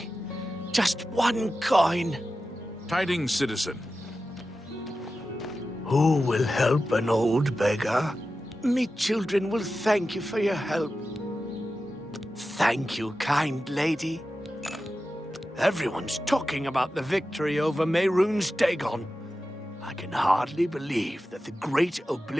Just one coin. Tidings, citizen. Who will help an old beggar? Me children will thank you for your help. Thank you, kind lady. Everyone's talking about the victory over Mehrunes Dagon. I can hardly believe that the great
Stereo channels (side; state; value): both; normal; correlation 0.93